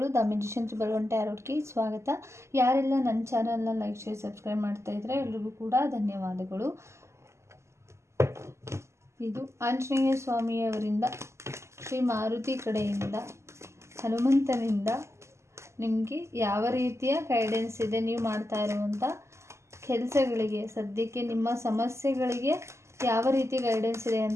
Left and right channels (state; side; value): late; left; 0.13 ms